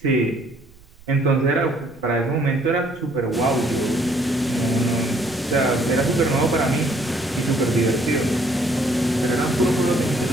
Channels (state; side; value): noise; right; rumble, 25 dB below the sound